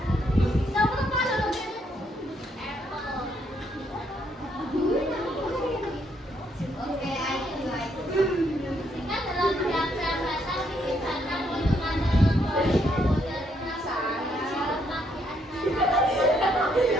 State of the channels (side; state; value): both; normal; correlation 0.73